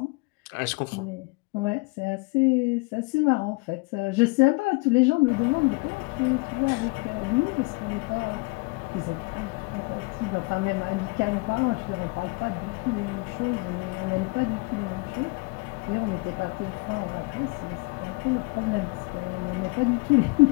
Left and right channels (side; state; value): right; quieter; 28.4 dB